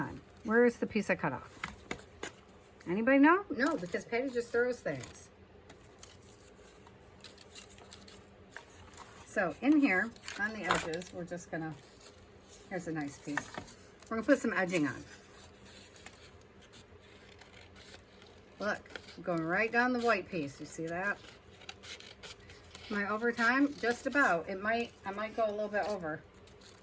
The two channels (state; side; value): identical; both; correlation 1.00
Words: Where is the piece I cut off? Anybody know? No, because Patty just throws things. So in here, on the edges, we're just going to... here's a nice piece. We're going to put some edging on. Look, I'm going right down the white piece. You see that? Am I over time? Just about. I might go a little bit over